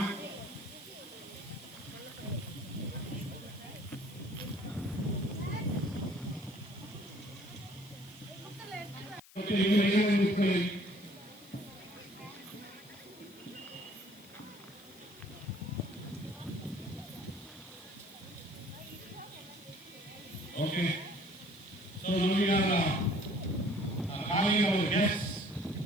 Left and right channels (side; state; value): left; noise; hiss, 22 dB below the sound